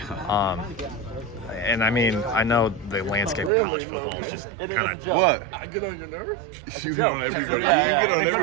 And I mean, I know the landscape of college football is just kind of... What? I get on your nerves? You get on everybody. You get on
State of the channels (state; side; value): drops out; left; at 3.5 s